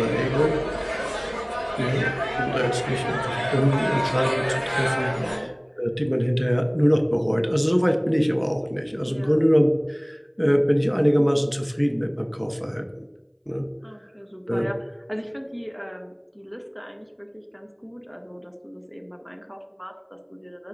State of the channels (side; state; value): both; identical; correlation 1.00